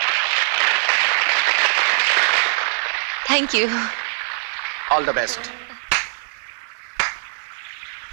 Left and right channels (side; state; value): left; silent; digital silence